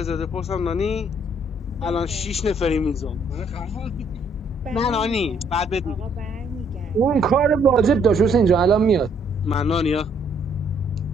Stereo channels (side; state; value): both; normal; correlation 0.67